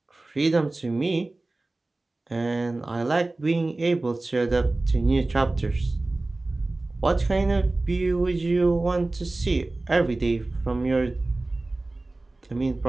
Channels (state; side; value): quieter; left; 3.0 dB